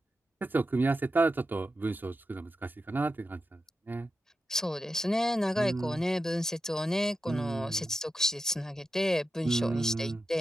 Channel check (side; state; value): both; normal; correlation 0.90